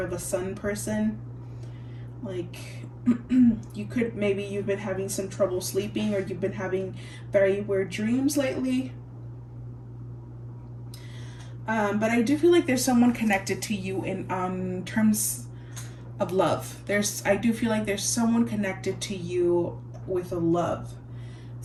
a sun person. Like maybe you've been having some trouble sleeping, or you've been having very weird dreams lately. But I do feel like there's someone connected to you in terms of love. I do feel like there's someone connected to you with a love.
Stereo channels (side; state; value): both; identical; correlation 1.00